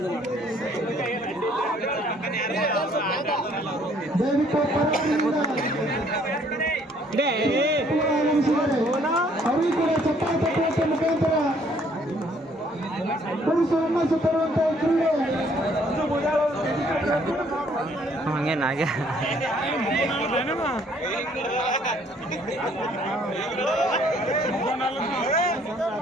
ಅವರಿಗೆ ಕೂಡ ಚಪ್ಪಾಳೆ ತಟ್ಟುವಂತ ಮುಖಾಂತರ ಪುರುಷರನ್ನ ಸುತ್ತರುವಂತ ಕ್ರೀಡೆ ಹಂಗೇನಾಗೆ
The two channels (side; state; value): both; normal; correlation 0.62